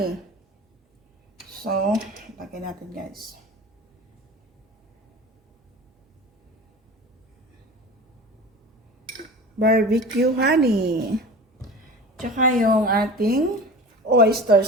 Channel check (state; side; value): normal; both; correlation 0.35